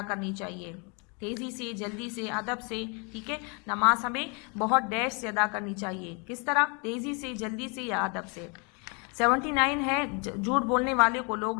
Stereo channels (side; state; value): right; quieter; 33.5 dB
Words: کرنی چاہیے، تیزی سے، جلدی سے، ادب سے. ٹھیک ہے. نماز ہمیں بہت ڈیش سے ادا کرنی چاہیے. کس طرح؟ تیزی سے، جلدی سے یا ادب سے. 79 ہے جھوٹ بولنے والے کو لوگ